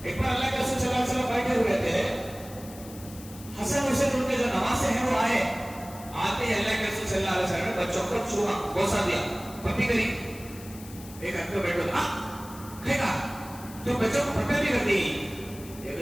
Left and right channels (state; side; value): noise; left; hiss, 18 dB below the sound